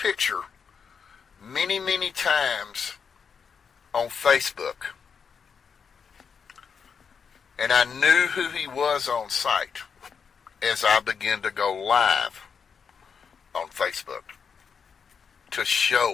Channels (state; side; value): quieter; right; 6.3 dB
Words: many, many times on Facebook. And I knew who he was on site as I began to go live on Facebook to